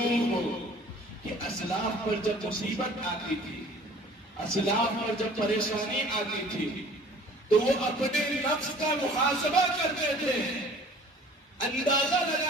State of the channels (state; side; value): normal; both; correlation 0.50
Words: ہو کہ اسلاف پر جب مصیبت آتی تھی، اسلاف پر جب پریشانی آتی تھی تو وہ اپنے نفس کا محاسبہ کرتے تھے، اندازہ